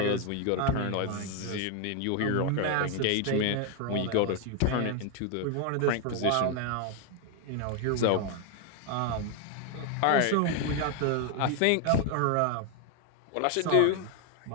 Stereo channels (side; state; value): both; different; correlation 0.01